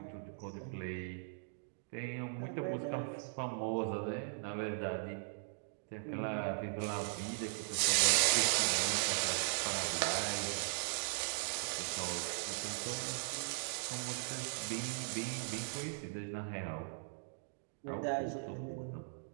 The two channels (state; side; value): silent; left; digital silence